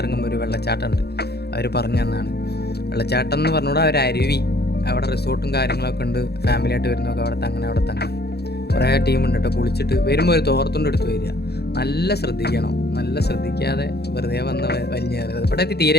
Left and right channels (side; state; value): right; late; 0.47 ms